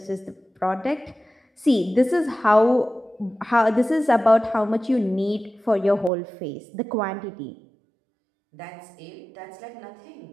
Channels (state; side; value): drops out; left; at 6.1 s